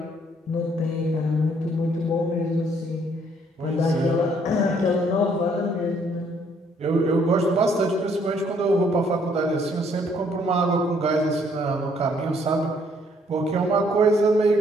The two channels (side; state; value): both; normal; correlation 0.66